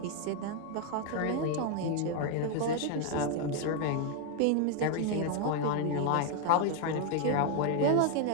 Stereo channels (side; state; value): both; different; correlation 0.00